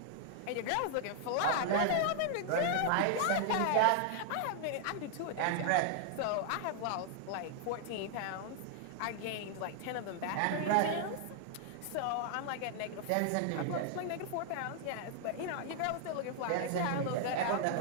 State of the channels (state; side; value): different; both; correlation 0.00